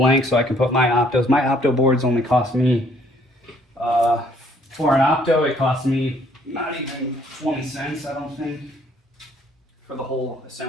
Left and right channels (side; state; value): both; normal; correlation 0.64